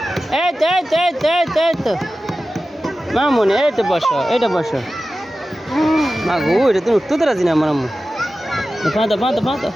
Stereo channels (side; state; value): both; normal; correlation 0.94